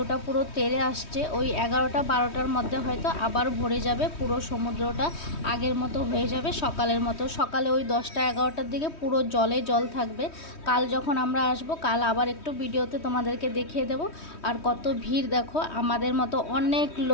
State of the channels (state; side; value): late; right; 3.2 ms